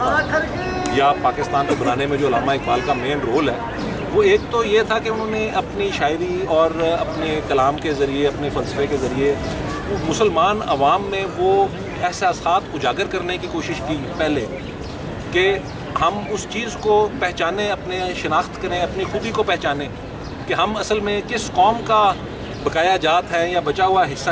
یا پاکستان کو بنانے میں جو علامہ اقبال کا مین رول ہے وہ ایک تو یہ تھا کہ انہوں نے اپنی شاعری اور اپنے کلام کے ذریعے اپنے فلسفے کے ذریعے مسلمان عوام میں وہ احساسات اجاگر کرنے کی کوشش کی پہلے کہ ہم اس چیز کو پہچانیں، اپنے شناخت کریں، اپنی خودی کو پہچانیں کہ ہم اصل میں کس قوم کا بقایا جات ہیں یا بچا ہوا حصہ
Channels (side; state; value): both; identical; correlation 1.00